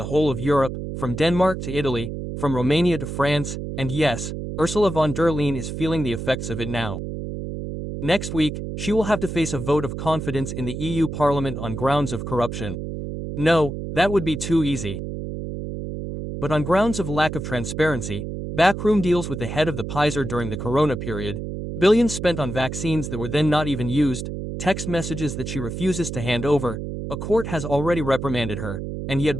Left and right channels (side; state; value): right; noise; hum, 6 dB below the sound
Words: whole of Europe, from Denmark to Italy, from Romania to France, and yes, Ursula von der Leyen is feeling the effects of it now. Next week, she will have to face a vote of confidence in the EU Parliament on grounds of corruption. No, that would be too easy. But on grounds of lack of transparency, backroom deals with the head of the Pfizer during the corona period, billions spent on vaccines that were then not even used, text messages that she refuses to hand over, a court has already reprimanded her, and